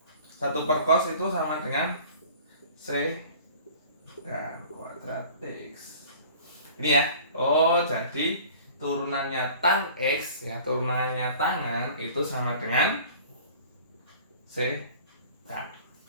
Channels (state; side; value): inverted; both; correlation -0.46